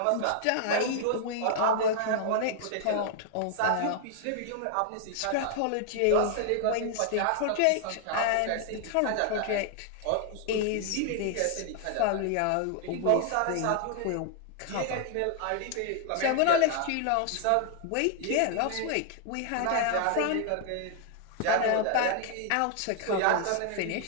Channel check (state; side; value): different; both; correlation 0.00